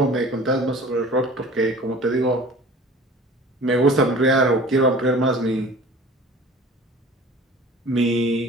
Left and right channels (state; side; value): normal; both; correlation 0.44